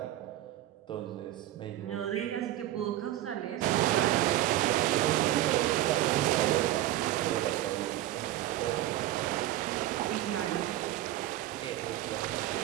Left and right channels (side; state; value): left; quieter; 14.3 dB